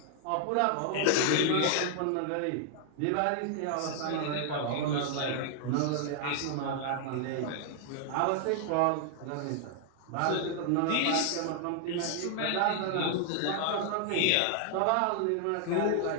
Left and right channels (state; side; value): different; both; correlation 0.00